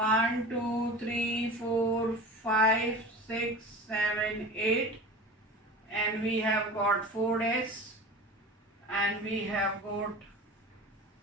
2, 3, 4, 5, 6, 7, 8. And we have got 4s. And we have got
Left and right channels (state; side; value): normal; both; correlation 0.35